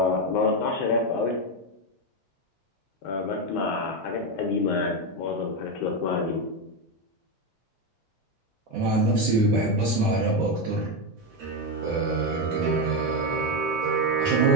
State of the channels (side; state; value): both; normal; correlation 0.09